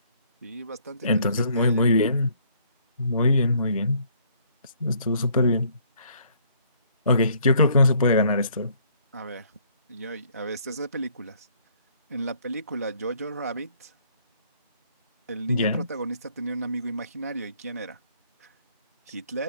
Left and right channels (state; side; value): inverted; both; correlation -0.63